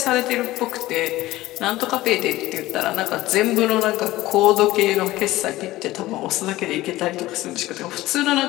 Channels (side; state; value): right; quieter; 17.1 dB